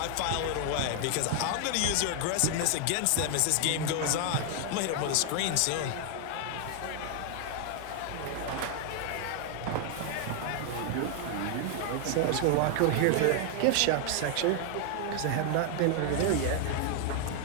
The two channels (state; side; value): different; both; correlation 0.00